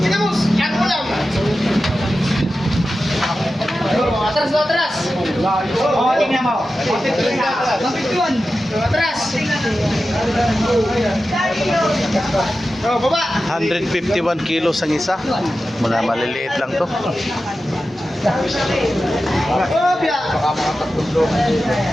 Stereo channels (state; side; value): normal; both; correlation 0.93